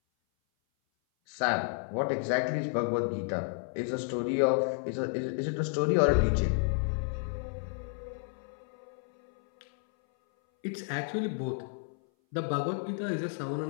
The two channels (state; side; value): silent; right; 57 dB below the other